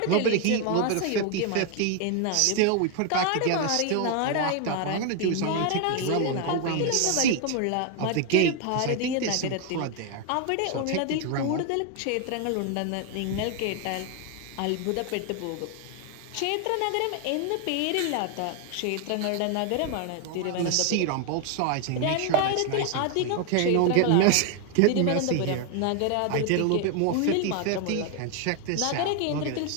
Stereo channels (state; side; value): different; both; correlation 0.01